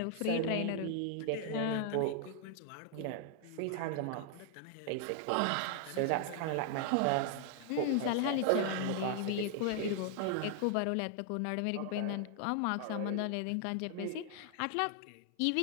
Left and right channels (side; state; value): both; different; correlation 0.00